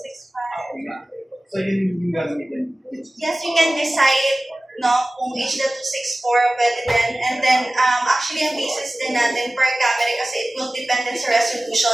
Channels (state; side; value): normal; both; correlation 0.97